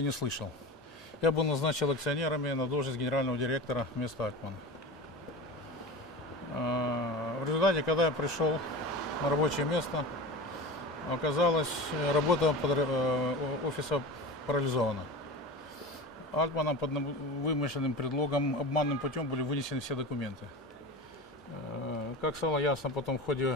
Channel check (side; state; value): both; normal; correlation 0.31